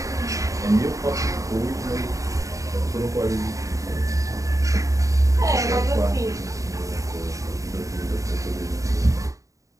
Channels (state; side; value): late; left; 0.16 ms